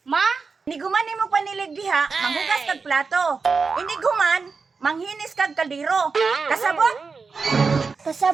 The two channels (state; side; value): quieter; left; 4.8 dB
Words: Ma, iniguman nimo panilig diha, manghugas kag plato. Iniguman, manghinis kag kaldero. Kasabot?